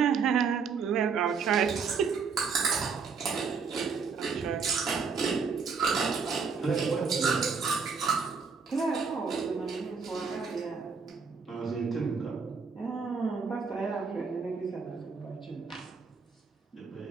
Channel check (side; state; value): left; quieter; 5.4 dB